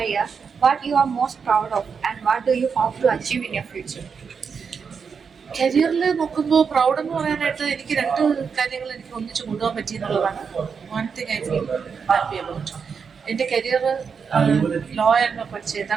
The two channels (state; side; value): quieter; left; 6.0 dB